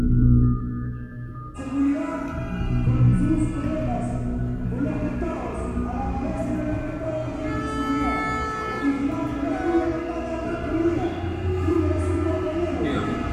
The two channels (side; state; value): both; identical; correlation 1.00